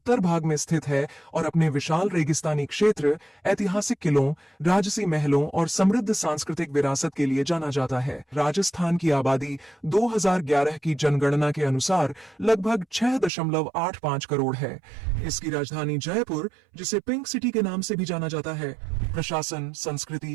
भाग में स्थित है और अपने विशाल रेगिस्तानी क्षेत्र, ऐतिहासिक किलों, राजसी महलों और समृद्ध सांस्कृतिक विरासत के लिए जाना जाता है। राजस्थान की आबादी 2011 की जनगणना के अनुसार लगभग 6.85 करोड़ है। इसकी राजधानी जयपुर, जिसे पिंक सिटी के नाम से भी जाना जाता है, प्रशासन,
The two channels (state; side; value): drops out; left; at 13.3 s